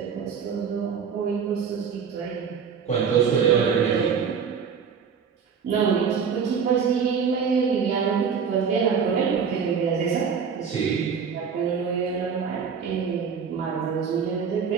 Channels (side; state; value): left; quieter; 6.6 dB